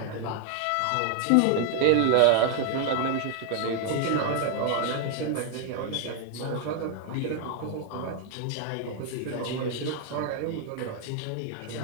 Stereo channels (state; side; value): different; both; correlation 0.00